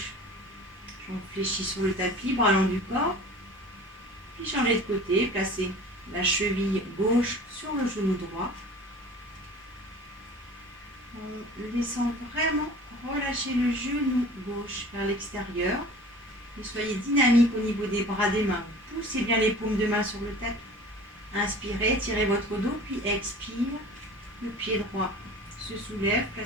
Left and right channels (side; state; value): both; normal; correlation 0.42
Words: jambe fléchie sur le tapis, bras long du corps. Puis changez de côté, placez la cheville gauche sur le genou droit. En laissant vraiment relâcher le genou gauche vers l'extérieur. Et soyez dynamique au niveau des bras des mains. Poussez bien les paumes de main sur le tapis. Inspirez, tirez votre dos, puis expire. Le pied droit se soulève,